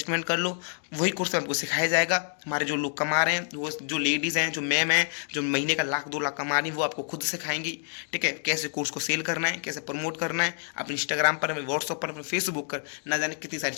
कर लो, वही कोर्स में आपको सिखाया जाएगा। हमारे जो लोग कमा रहे हैं, वो जो लेडीज़ हैं, जो मैम हैं, जो महीने का 1-2 लाख कमा रही हैं, वो आपको खुद सिखाएंगी। ठीक है, कैसे कोर्स को सेल करना है, कैसे प्रमोट करना है अपने इंस्टाग्राम पर, अपने व्हाट्सअप पर, अपने फेसबुक पर, ना जाने कितनी सारी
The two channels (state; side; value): silent; right; 59 dB below the other